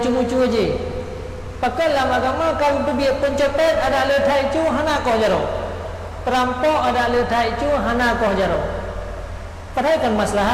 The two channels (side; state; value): both; identical; correlation 1.00